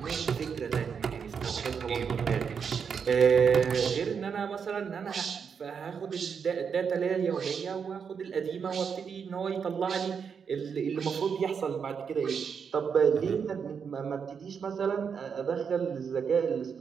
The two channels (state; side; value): quieter; left; 6.5 dB